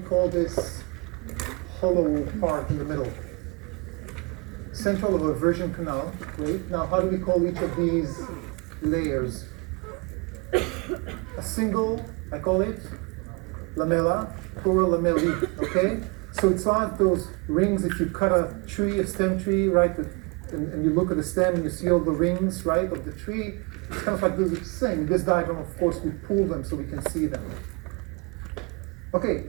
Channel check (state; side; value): quieter; left; 30.2 dB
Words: this hollow part in the middle? Central of a version canal, great. Now how do we call each of these layers? A single, I call it lamella, plural lamellae, okay? So it's like those rings if you cut a tree, a stem tree, right? And you look at the stem and you see all the rings, right, of the tree. It's kind of like the same. In this diagram, of course, we pull them so we can see them. Okay,